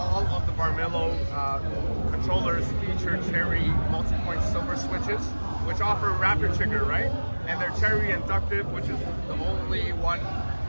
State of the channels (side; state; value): both; inverted; correlation -1.00